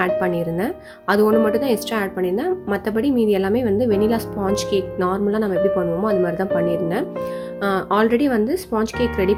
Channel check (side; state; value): both; identical; correlation 1.00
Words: ஆட் பண்ணியிருந்தேன். அது ஒன்று மட்டும் தான் எக்ஸ்ட்ரா ஆட் பண்ணியிருந்தேன். மற்றபடி மீதி எல்லாமே வெனிலா ஸ்பாஞ்ச் கேக் நார்மலாக நம்ம எப்படி பண்ணுவோமோ அது மாதிரி தான் பண்ணியிருந்தேன். ஆல்ரெடி ஸ்பாஞ்ச் கேக் ரெடி